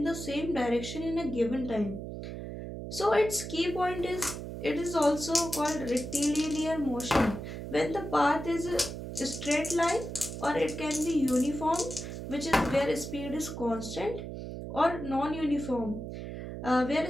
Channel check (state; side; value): noise; right; hum, 8 dB below the sound